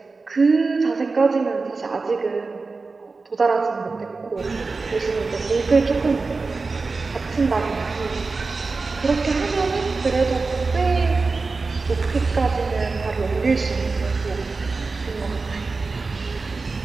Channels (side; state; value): left; quieter; 4.0 dB